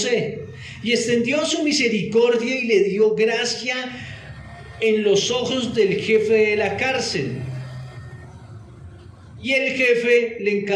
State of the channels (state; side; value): identical; both; correlation 1.00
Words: y extendió su misericordia y le dio gracia en los ojos del jefe de la cárcel. Y el jefe le